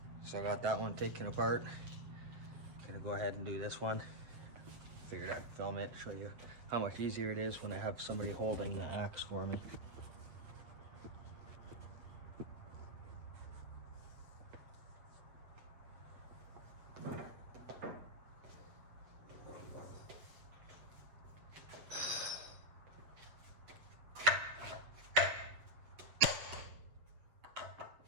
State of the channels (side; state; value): left; late; 7.9 ms